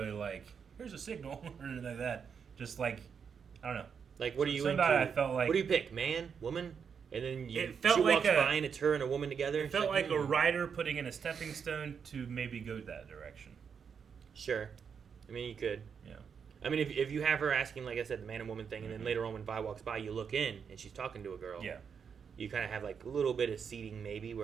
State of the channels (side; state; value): left; quieter; 6.7 dB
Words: like here's a signal or anything like that. Just like I don't know. Like what are you Somebody into? I felt like what do you pick, man, woman? And then It felt she like walks a- by and it's her and a woman together. it and felt she's like a "Hmm." writer putting in a stepping stone to maybe go that direction. Sure. I mean, you could. Yeah. I mean, if you have her asking, like I said, the man and woman thing, and then later on when Vi walks by, you look in and she's talking to a girl. Yeah. You kind of have like a little bit of seeding maybe